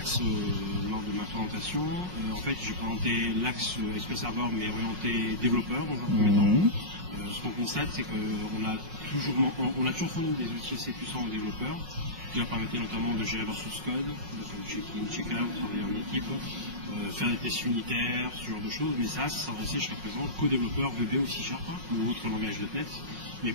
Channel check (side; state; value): left; late; 5.5 ms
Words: lors de ma présentation. En fait, j'ai présenté l'axe SQL Server, mais orienté développeur dans un premier temps. Ce qu'on constate, c'est qu'on a toujours fourni des outils assez puissants aux développeurs, qui leur permettaient notamment de gérer leur source code, de faire du check-in, check-out, travailler en équipe, faire des tests unitaires, ce genre de choses. Mais ça s'adressait jusqu'à présent qu'aux développeurs VB ou C# ou autres langages .NET, mais